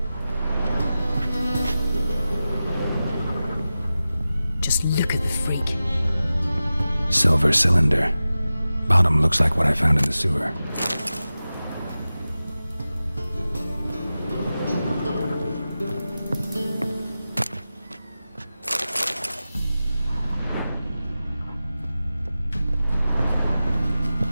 Just look at the freak. Silver cylinder. Bottom looks like what I found in the sewer.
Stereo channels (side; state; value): both; inverted; correlation -0.94